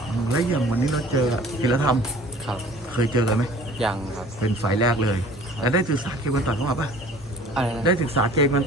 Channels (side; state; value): both; normal; correlation 0.48